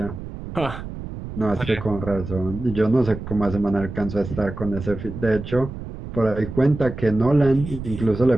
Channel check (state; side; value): noise; right; rumble, 9 dB below the sound